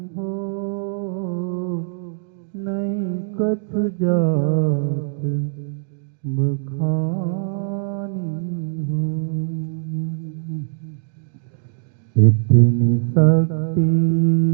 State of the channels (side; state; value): left; silent; digital silence